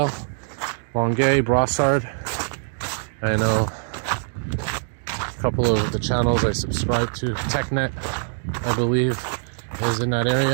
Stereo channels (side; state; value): left; silent; digital silence